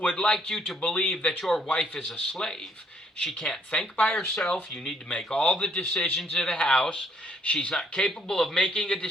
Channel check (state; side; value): normal; both; correlation 0.67